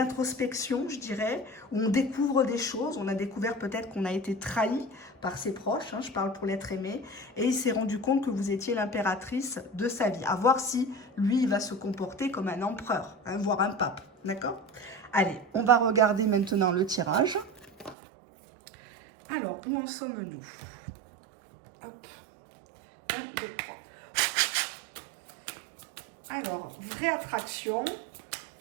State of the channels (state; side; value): drops out; left; at 17.9 s